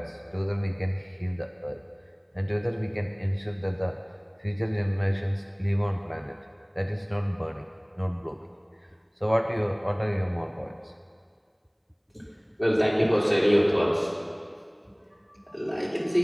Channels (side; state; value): both; identical; correlation 1.00